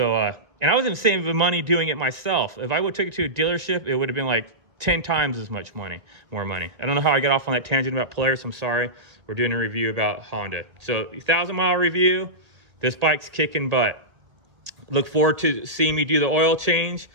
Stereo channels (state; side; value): late; left; 1.9 ms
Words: and I wasn't saving money doing it myself. If I would take it to a dealership, it would have been like 10 times as much money, more money. I don't know how I got off on that tangent about Polaris. I'm sorry. We're doing a review about Honda. So 1,000-mile review. This bike's kicking butt. Look forward to seeing me do the oil change.